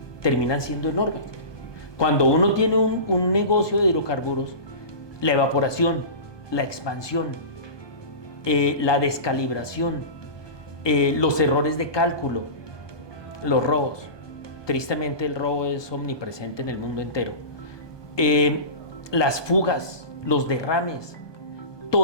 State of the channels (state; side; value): late; right; 1.2 ms